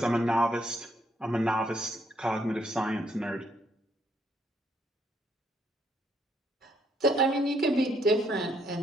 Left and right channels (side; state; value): both; normal; correlation 0.71